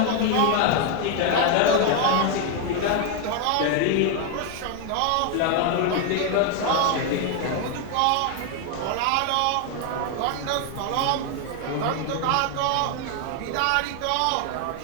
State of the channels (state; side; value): different; both; correlation 0.01